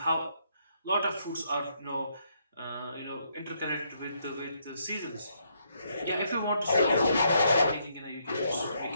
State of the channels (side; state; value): both; inverted; correlation -0.74